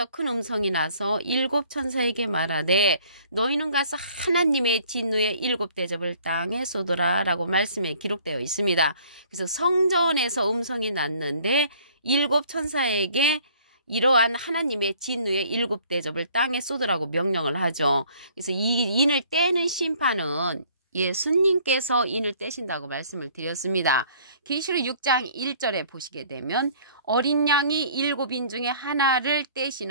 큰 음성이 나서 일곱 천사에게 말하되 너희는 가서 하나님의 진노의 일곱 대접을 땅에 쏟으라 라고 말씀에 기록되어 있습니다. 그래서 성전에서 음성이 났는데 일곱 천사에게 이러한 하나님의 진노의 일곱 대접을 땅에 쏟으라고 명령을 하죠. 그래서 이 인을 떼는 심판은 예수님께서 인을 떼신다고 말씀을 드렸습니다. 계시록 6장 1절에 보시게 되면 어린 양이 일곱 인 중에 하나를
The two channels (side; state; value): both; inverted; correlation -0.56